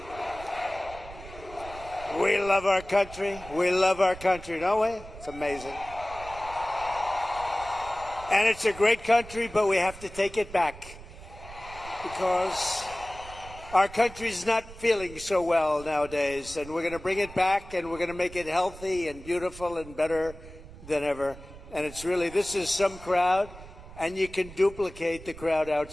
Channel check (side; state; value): right; noise; rumble, 16 dB below the sound